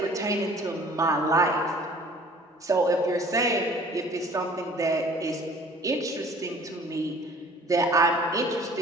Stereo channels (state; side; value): normal; both; correlation 0.50